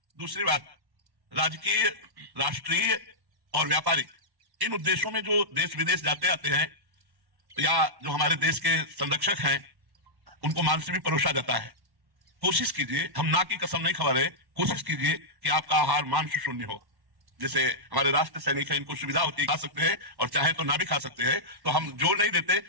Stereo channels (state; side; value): late; left; 1.1 ms